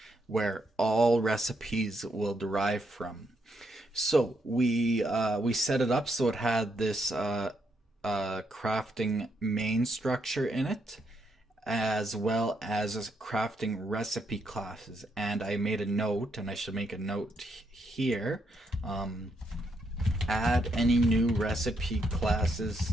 where all recipes will derive from. So we set it up so it had this crafting main structure in it, as well as crafting recipe classes. And I made a note, and I should make a note here. Add any new recipe classes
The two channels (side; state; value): both; normal; correlation 0.77